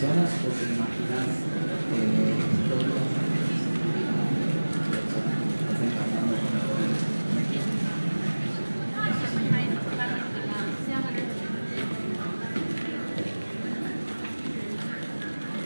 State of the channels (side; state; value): both; inverted; correlation -1.00